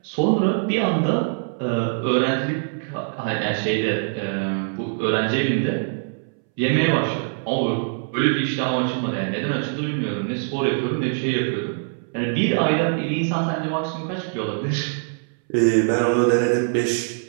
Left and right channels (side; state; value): left; silent; 63 dB below the other